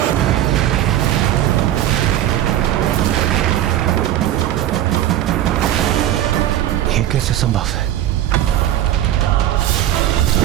ये कैसे संभव है?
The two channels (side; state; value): left; quieter; 12.5 dB